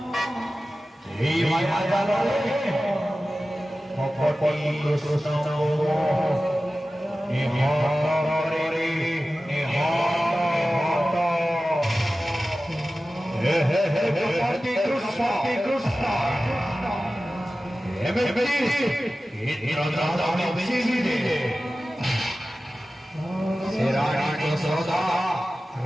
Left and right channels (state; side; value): normal; both; correlation 0.95